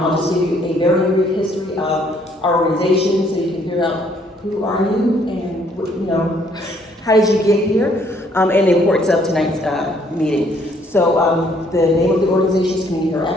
just give you a very brief history of our organization so you can figure out who are you and how did you get here, and the importance of tonight's meeting. So the name of the organization is Community Hero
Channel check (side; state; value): both; normal; correlation 0.65